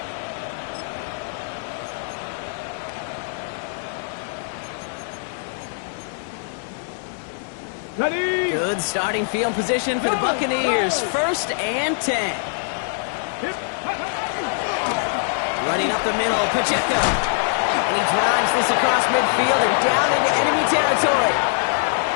Ready? Good starting field position for the Buccaneers. 1st and 10. Running up the middle, Pacheco. And he drives this across midfield and down into enemy territory.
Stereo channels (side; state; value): right; silent; digital silence